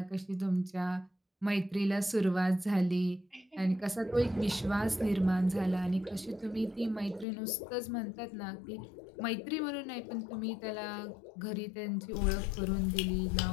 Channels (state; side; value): drops out; right; at 7.2 s